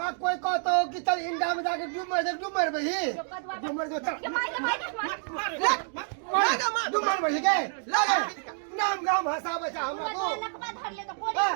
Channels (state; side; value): silent; left; 59 dB below the other